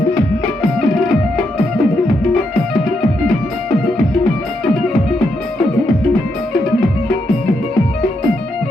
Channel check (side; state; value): both; normal; correlation 0.80